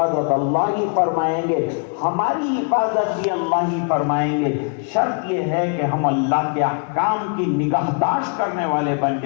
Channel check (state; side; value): quieter; right; 39.9 dB